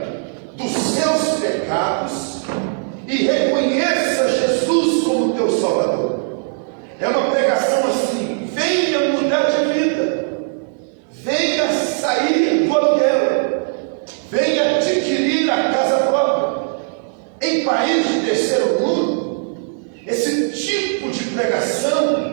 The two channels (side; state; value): left; silent; digital silence